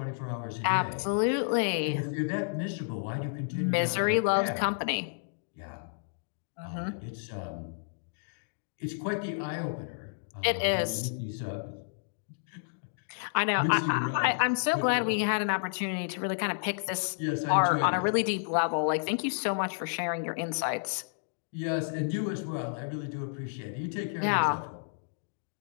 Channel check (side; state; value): right; silent; digital silence